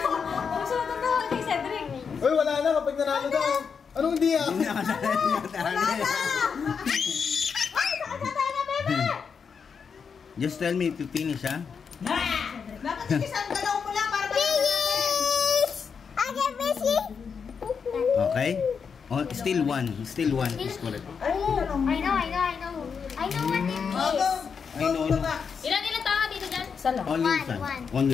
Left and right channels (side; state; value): right; quieter; 6.2 dB